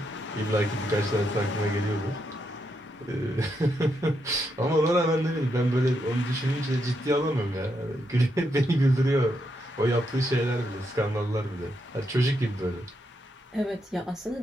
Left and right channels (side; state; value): both; normal; correlation 0.81